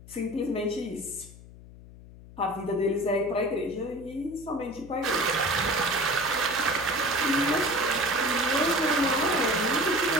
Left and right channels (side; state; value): left; noise; hum, 19 dB below the sound